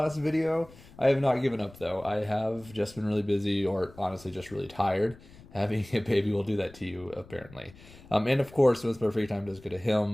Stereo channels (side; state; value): left; noise; rumble, 22 dB below the sound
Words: video. I have not given up though. I have just been really busy, or honestly just really tired. Having a baby will do that to you, apparently. And of course, most of our free time does go to